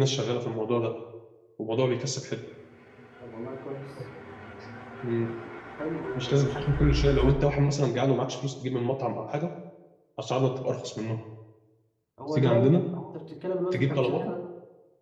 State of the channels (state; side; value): identical; both; correlation 1.00